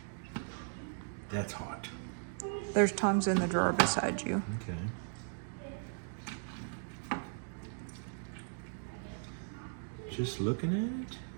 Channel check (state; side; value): silent; left; digital silence